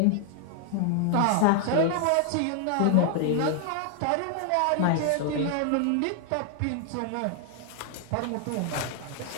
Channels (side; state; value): both; different; correlation 0.00